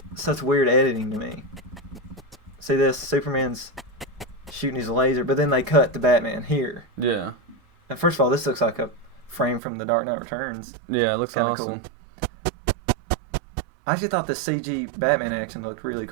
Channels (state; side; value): drops out; left; at 9.6 s